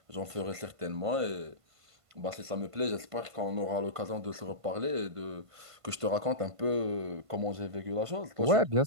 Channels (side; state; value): left; late; 1.5 ms